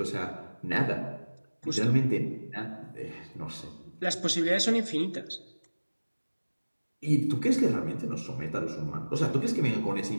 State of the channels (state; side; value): inverted; both; correlation -1.00